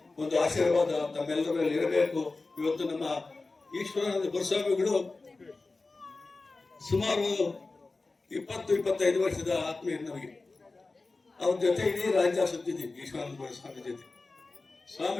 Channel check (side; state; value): right; quieter; 3.6 dB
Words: ಒಂದು ಆಶೀರ್ವಾದ ತಮ್ಮೆಲ್ಲರ ಮೇಲೆ ಇರಬೇಕು. ಇವತ್ತು ನಮ್ಮ ಈಶ್ವರಾನಂದ ಗುರುಸ್ವಾಮಿಗಳು ಸುಮಾರು 20-25 ವರ್ಷದ ಆತ್ಮೀಯ ನಮಗೆ. ಅವ್ರ ಜೊತೆ ಇಡೀ ರಾಜ್ಯ ಸುತ್ತಿದ್ದೀವಿ. ಈಶ್ವರಾನಂದ ಗುರುಸ್ವಾಮಿ ಜೊತೆ